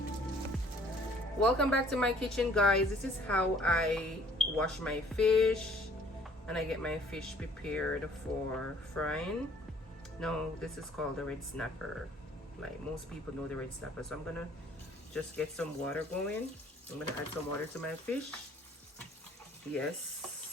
Welcome back to my kitchen, guys. This is how I wash my fish and I get my fish prepared for frying. Now this is called the red snapper. Like most people know the red snapper. So I'm gonna just get some water going. I'm gonna add some water to my fish.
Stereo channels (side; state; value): both; normal; correlation 0.58